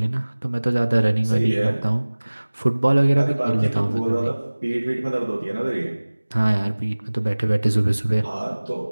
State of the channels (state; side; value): inverted; both; correlation -1.00